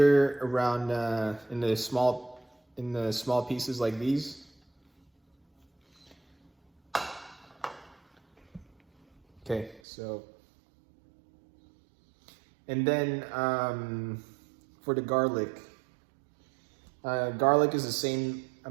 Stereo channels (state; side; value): drops out; left; at 9.8 s